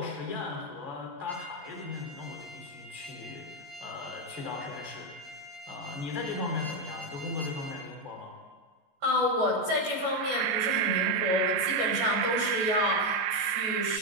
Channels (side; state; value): left; late; 14 ms